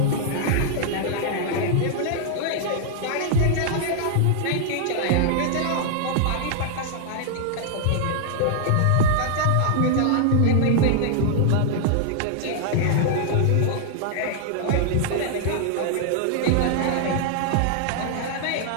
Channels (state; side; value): different; both; correlation 0.00